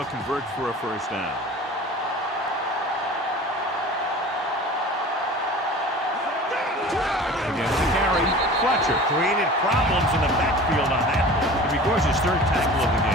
convert for a first down. Again with the carry. Fletcher created problems in the backfield on that one. It records his 3rd tackle of the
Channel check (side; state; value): both; normal; correlation 0.40